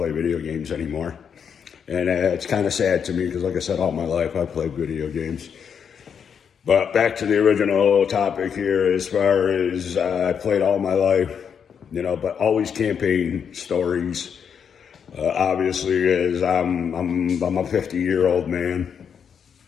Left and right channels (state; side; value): quieter; right; 7.3 dB